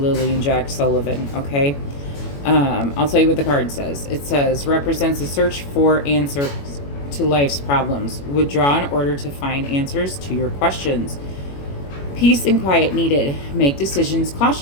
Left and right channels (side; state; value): right; late; 21 ms